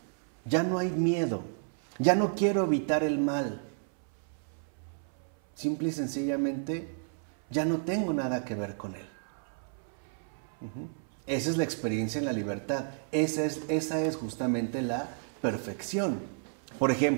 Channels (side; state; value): left; silent; 57 dB below the other